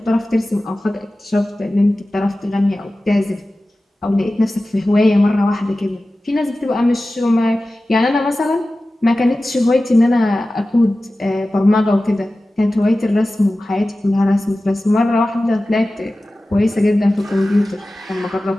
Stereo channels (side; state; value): both; normal; correlation 0.96